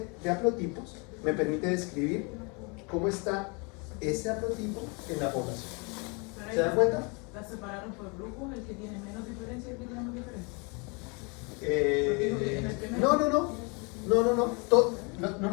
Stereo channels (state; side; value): quieter; right; 31.7 dB